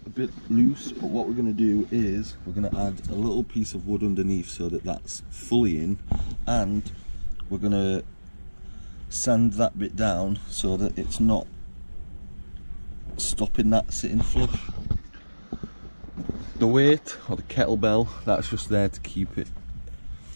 a bit loose, but what we're going to do is we're going to add a little piece of wood underneath so that that's fully in, and we're going to sand that bit down so that it's not stopping that sitting flush. The weight, or the kettlebell, that's just there to keep it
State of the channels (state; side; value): inverted; both; correlation -1.00